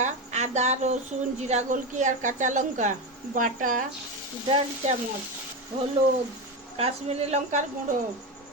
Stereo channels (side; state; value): both; normal; correlation 0.16